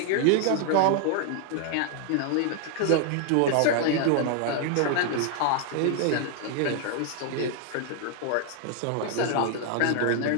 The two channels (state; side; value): different; both; correlation 0.00